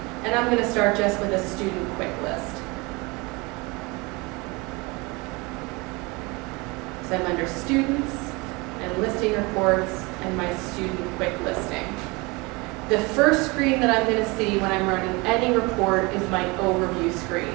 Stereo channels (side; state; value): left; quieter; 25.9 dB